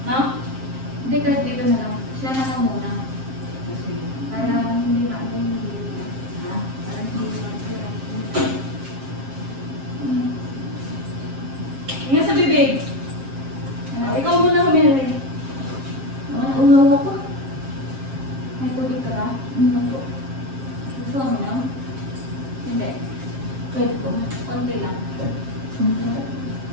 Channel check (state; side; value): late; left; 7.5 ms